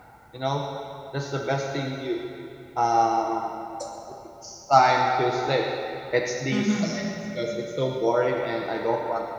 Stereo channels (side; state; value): both; identical; correlation 1.00